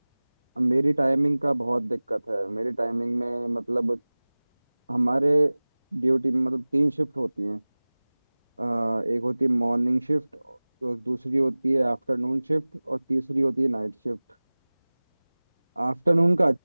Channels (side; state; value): both; inverted; correlation -1.00